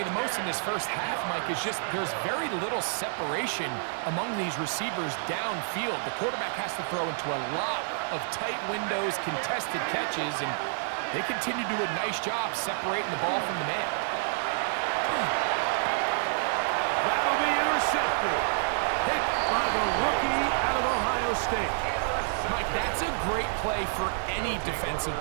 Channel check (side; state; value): left; silent; digital silence